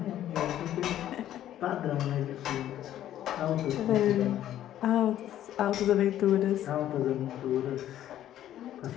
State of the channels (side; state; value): right; quieter; 12.0 dB